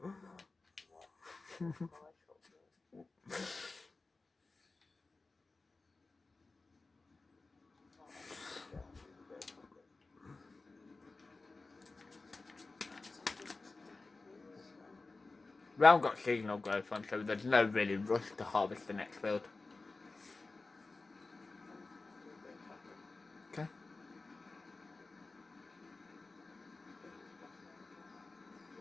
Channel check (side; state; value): right; quieter; 3.6 dB